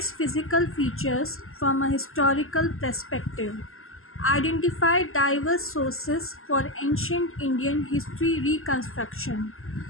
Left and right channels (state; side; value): late; right; 0.61 ms